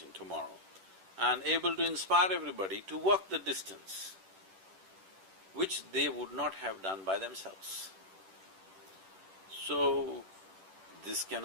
tomorrow and able to inspire everybody to walk the distance which they would not have done by themselves. So, this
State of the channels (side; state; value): left; late; 10 ms